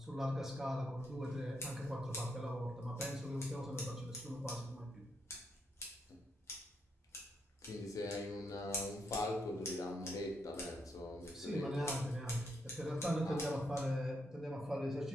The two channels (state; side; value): normal; both; correlation 0.79